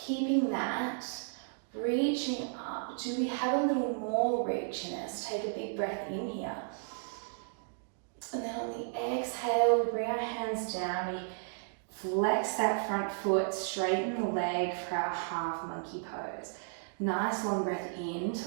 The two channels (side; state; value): left; silent; digital silence